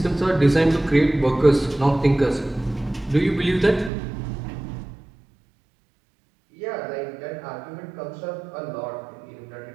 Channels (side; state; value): left; drops out; at 3.9 s